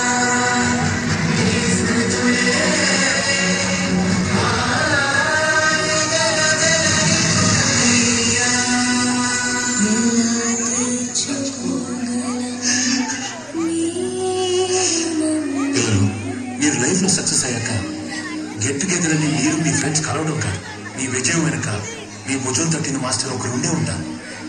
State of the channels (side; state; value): both; identical; correlation 1.00